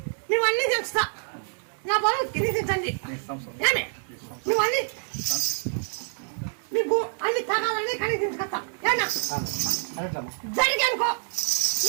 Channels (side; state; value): left; silent; 60 dB below the other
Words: నువ్వన్నీ తెలుస్తా. నా బరువు తిరిగించండి, నువ్వన్నీ నీకు అన్ని తరాలన్నీ కనిపించుకొస్తా. జరిగి అనుకో